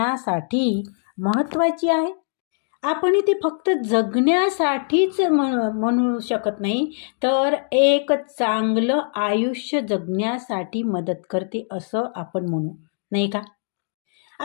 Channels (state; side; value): silent; right; digital silence